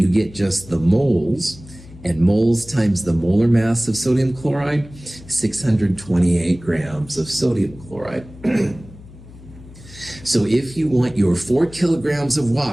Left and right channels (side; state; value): left; noise; hum, 19 dB below the sound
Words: get just the moles. And moles times the molar mass of sodium chloride, 628 grams of sodium chloride. So if you want your 4 kilograms of